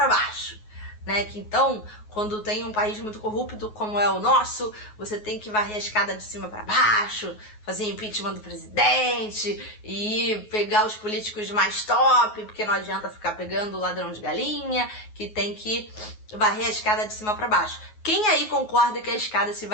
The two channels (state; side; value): late; right; 9.4 ms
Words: baixo, né, que então, quando tem um país muito corrupto como é o nosso, você tem que varrer a escada de cima para baixo, fazer impeachment do presidente e pegar os políticos mais top, porque não adianta ficar pegando o ladrão de galinha, que tem que varrer a escada de cima para baixo. Quem aí concorda que a escada se